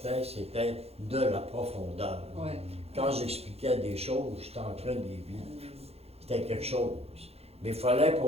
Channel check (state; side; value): late; left; 0.29 ms